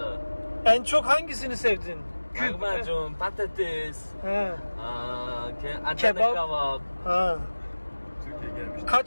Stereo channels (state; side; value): inverted; both; correlation -1.00